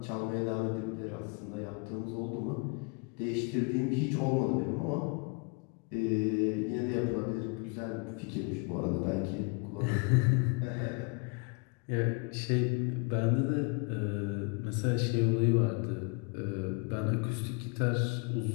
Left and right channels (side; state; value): right; quieter; 33.1 dB